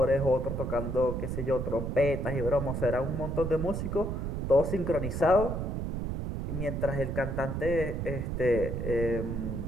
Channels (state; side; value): noise; right; rumble, 3 dB below the sound